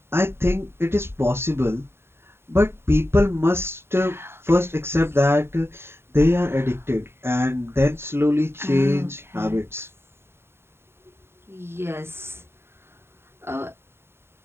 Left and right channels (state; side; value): late; left; 0.11 ms